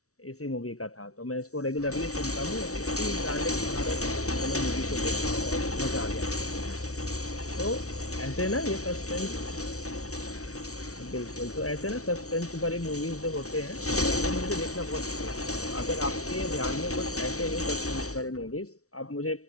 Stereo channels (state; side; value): late; right; 0.64 ms